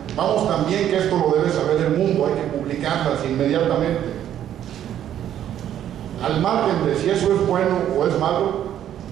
vamos, también que esto lo debe saber el mundo, hay que publicarlas inmediatamente. Al margen de si eso es bueno o es malo,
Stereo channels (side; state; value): left; quieter; 10.8 dB